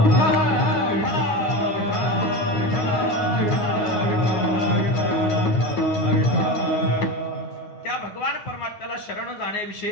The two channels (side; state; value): right; late; 9.6 ms